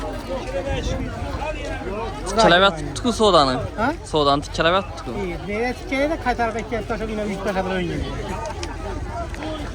Tikkelebet tutku sodanı. Ha? Sodan tikkelebet tutku. İyi. Nereye tikkeyi de kay tarafa ekmek taşı yine büyük taşı böyle oynuyor.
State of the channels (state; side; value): identical; both; correlation 1.00